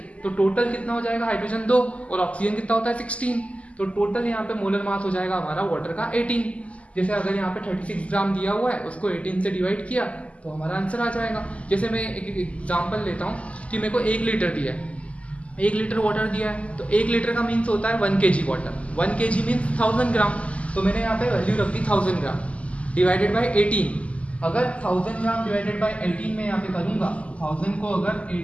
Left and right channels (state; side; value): late; right; 0.064 ms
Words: तो टोटल कितना हो जाएगा? हाइड्रोजन 2 और ऑक्सीजन कितना होता है 16, तो टोटल यहाँ पे मोलर मास हो जाएगा हमारा वाटर का 18। जैसे अगर यहाँ पे 36 ग्राम दिया हुआ है, उसको 18 से डिवाइड किया तो हमारा आंसर आ जाएगा। जैसे मैं एक एग्जाम्पल लेता हूँ कि मेरे को 1 लीटर दिया है, 1 लीटर वाटर दिया है, तो 1 लीटर का मीन्स होता है 1 kg वाटर। 1 kg मीन्स 1000 ग्राम, तो मैंने यहाँ पे वैल्यू रख दी 1000 ग्राम डिवाइडेड बाई 18। अगर 1000 ग्राम डिवाइडेड बाई 18 में यहाँ पे करूँगा, 1000 को अगर